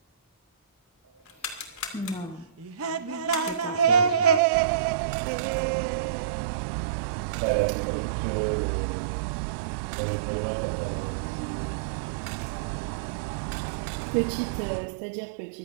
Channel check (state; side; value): drops out; left; at 4.4 s